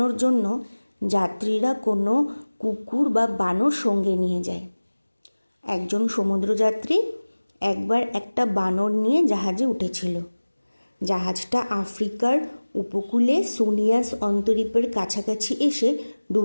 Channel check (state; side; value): inverted; both; correlation -1.00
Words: জন্য যাত্রীরা কোনো কুকুর বা বানর সঙ্গে নিয়ে যায়। একজন সমুদ্রযাত্রী একবার একটা বানর নিয়ে জাহাজে উঠেছিল। জাহাজটা আফ্রিকার উপকূলে সোনিয়াস অন্তরীপের কাছাকাছি এসে